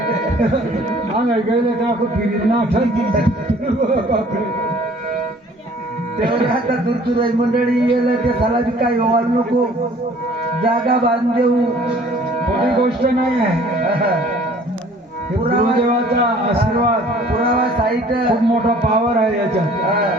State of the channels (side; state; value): both; normal; correlation 0.53